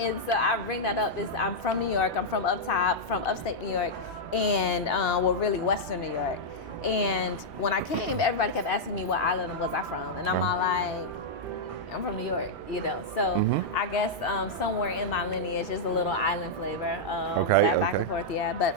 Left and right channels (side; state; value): both; normal; correlation -0.06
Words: so I bring that up. I'm from New York. I'm from up top, from upstate New York, and really Western New York. And when I came, everybody kept asking me what island was I from, and I'm all like, I'm from New York, So I guess somewhere in my lineage is a little island flavor. Back and forth, yeah. But